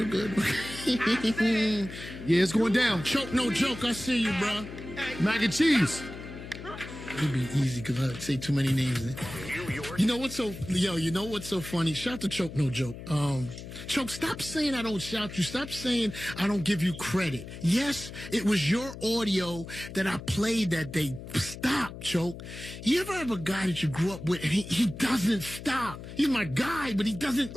good. Yeah, it's going down. Choke, no joke. I see you, bro. Mac and cheese. It'd be easy because I say too many names. You know what's so funny? Shout to Choke, no joke. Choke, stop saying I don't shout you. Stop saying I don't give you credit. Yes, it was your audio that I played that day. Stop, Choke. You ever have a guy that you grew up with and he doesn't stop? He's my guy, but he doesn't,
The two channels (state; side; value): noise; left; hum, 12 dB below the sound